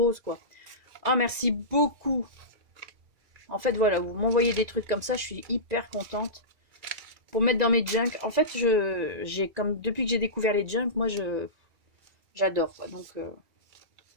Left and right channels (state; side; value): late; left; 2.0 ms